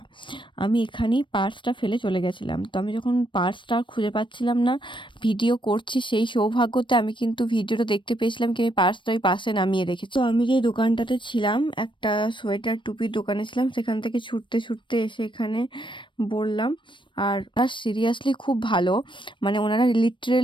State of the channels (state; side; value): late; right; 0.24 ms